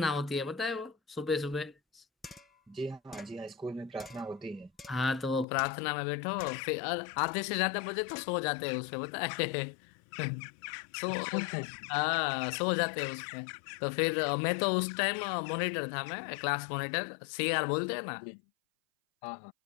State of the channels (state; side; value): drops out; right; at 5.5 s